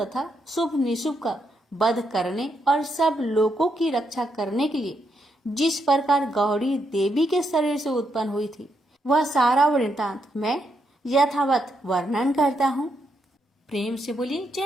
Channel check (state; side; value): normal; both; correlation 0.79